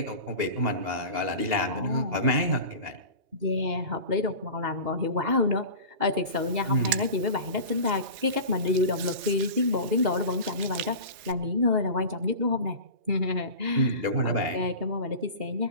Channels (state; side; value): late; left; 3.4 ms